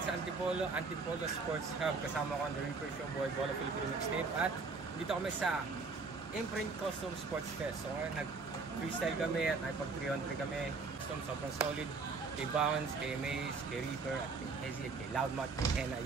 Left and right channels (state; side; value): quieter; left; 4.4 dB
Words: sa Antipolo Sports Hub. Kasama ko ang The Reaper Show Boy, Bola Filipino Mixtape. At dito kami sa Imprint Custom Sports Fest. So ngayon, nag-freestyle kami at nakipag-300 kami. Sobrang solid. Kay Bounce, kay Maze, kay Reaper, at kay Hezzy, at kay Loudmouth, kay Henna.